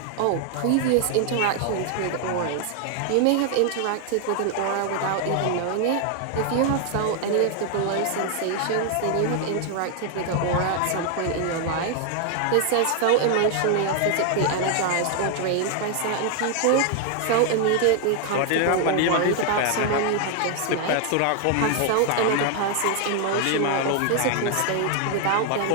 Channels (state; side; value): different; both; correlation 0.00